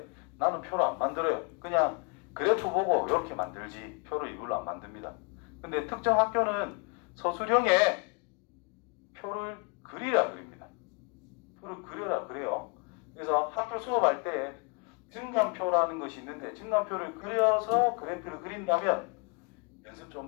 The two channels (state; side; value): quieter; right; 34.5 dB